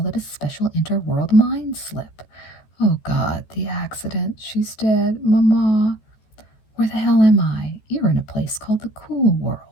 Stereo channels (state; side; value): late; right; 14 ms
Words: it a special interworld mind slip. Oh, God, the accident. She's dead. Mama. Where the hell am I? You're in a place called the cool